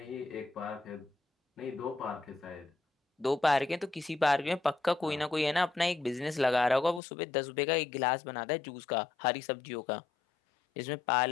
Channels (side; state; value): right; drops out; at 7.0 s